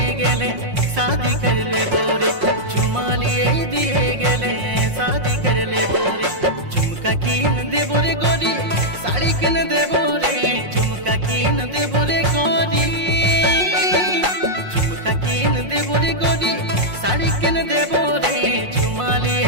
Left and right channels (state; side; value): late; left; 5.6 ms